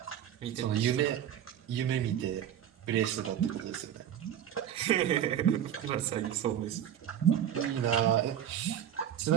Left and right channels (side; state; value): left; quieter; 10.2 dB